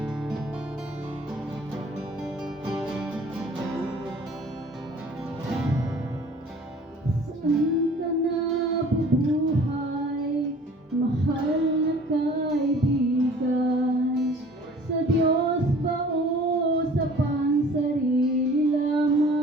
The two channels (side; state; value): both; normal; correlation 0.49